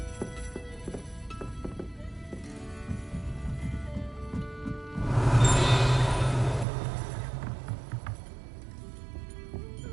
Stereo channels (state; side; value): drops out; left; at 6.7 s